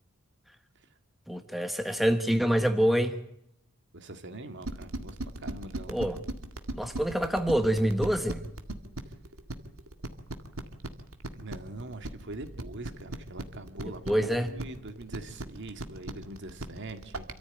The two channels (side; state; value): both; normal; correlation 0.88